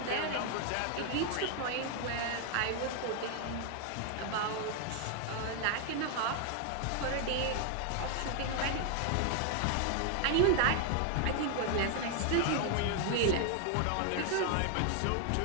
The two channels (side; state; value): both; different; correlation 0.00